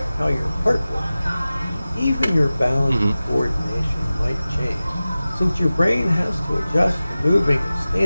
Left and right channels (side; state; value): both; inverted; correlation -0.96